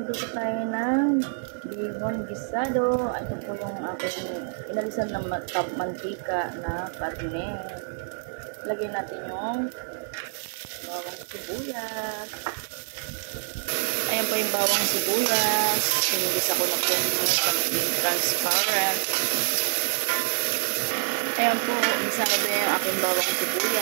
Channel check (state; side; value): silent; left; 60 dB below the other